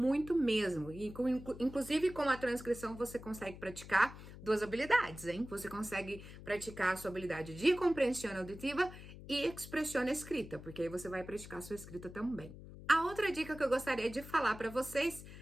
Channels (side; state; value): left; noise; hum, 14 dB below the sound